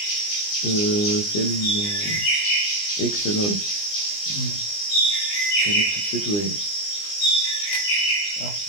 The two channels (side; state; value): right; late; 20 ms